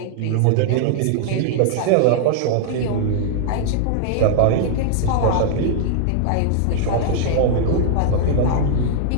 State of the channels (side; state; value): both; different; correlation -0.01